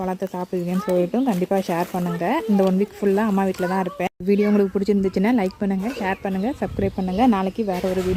பழத்தை சாப்பிடுவீங்கன்னு சொல்லிட்டும் கண்டிப்பாக ஷேர் பண்ணுங்கள். இந்த 1 வீக் ஃபுல்லாக அம்மா வீட்டில் தான் இருப்பேன். வீடியோ உங்களுக்கு பிடிச்சிருந்துச்சுன்னா லைக் பண்ணுங்கள், ஷேர் பண்ணுங்கள், சப்ஸ்கிரைப் பண்ணுங்கள். நாளைக்கு வேறு ஒரு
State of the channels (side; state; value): both; identical; correlation 1.00